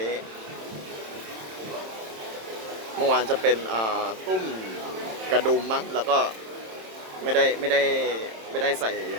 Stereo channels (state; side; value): late; left; 27 ms